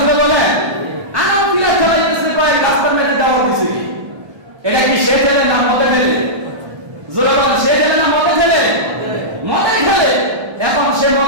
বলে? আনাও পিলার খেলাইতেছে, কয়েক রাস্তার মাঝে দেওয়াল দিছে কি? এটা কি সে খেলে না মদে খেলে? জোরে বলেন, সে খেলে না মদে খেলে? মদে খেলে। এখন সে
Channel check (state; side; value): late; left; 1.3 ms